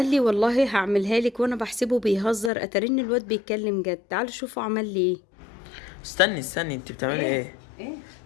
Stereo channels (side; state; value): right; drops out; at 2.5 s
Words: لي والله هعملها لك، وانا بحسبه بيهزر، اترن الواد بيتكلم جد. تعالوا شوفوا عمل لي ايه. استني انت بتعملي ايه؟ ايه؟